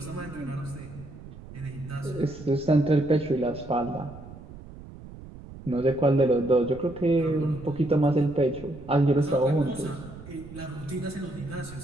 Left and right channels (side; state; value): right; noise; rumble, 16 dB below the sound